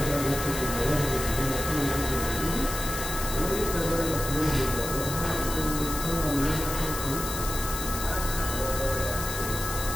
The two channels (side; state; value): left; noise; hiss, 6 dB below the sound